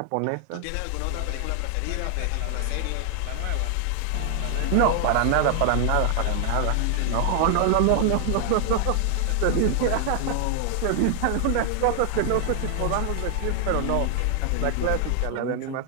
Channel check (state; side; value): different; both; correlation 0.00